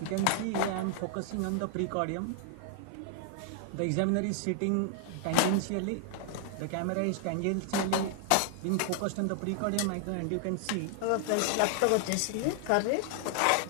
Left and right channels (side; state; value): both; different; correlation 0.00